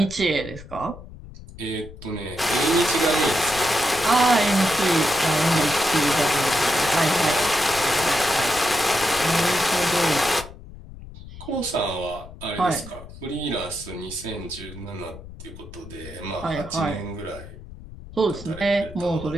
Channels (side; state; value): left; noise; rumble, 16 dB below the sound